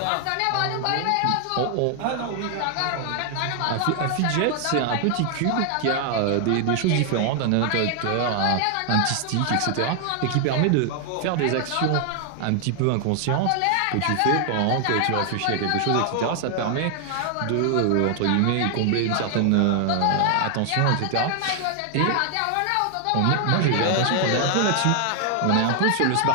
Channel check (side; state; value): both; different; correlation 0.00